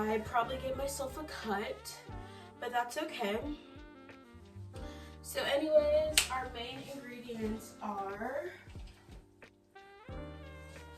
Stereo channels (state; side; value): identical; both; correlation 1.00